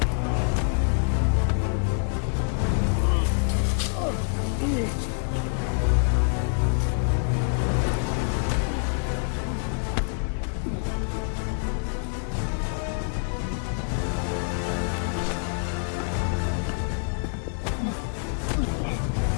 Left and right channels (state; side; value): silent; right; 61 dB below the other